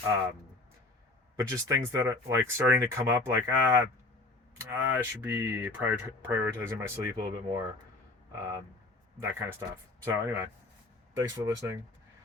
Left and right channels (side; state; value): right; quieter; 3.0 dB